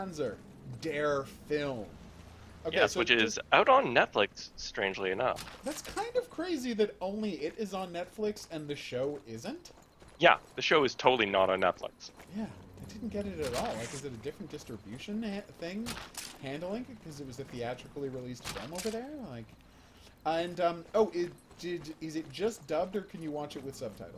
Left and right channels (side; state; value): both; identical; correlation 1.00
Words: Dare Film. Okay, Yes, so which is out on Netflix, strangely enough. that's kind of crazy that only it is on Netflix and the show isn't. Yeah, the show is totally not on Netflix. Yeah, I didn't get it at all. Like, is it a different distribution thing handling it because it was a theatrically released film over there? Like, and is it just dubbed or can you watch it with